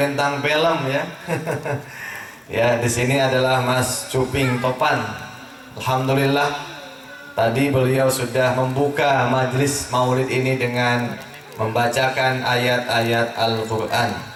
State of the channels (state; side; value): identical; both; correlation 1.00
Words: film ya. Ya, di sini adalah Mas Cuping Topan. Alhamdulillah tadi beliau sudah membuka majlis maulid ini dengan membacakan ayat-ayat Al-Qur'an.